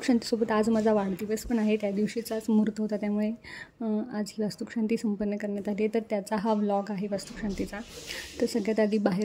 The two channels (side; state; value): both; identical; correlation 1.00